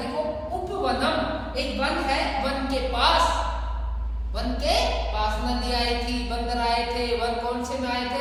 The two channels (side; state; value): both; identical; correlation 1.00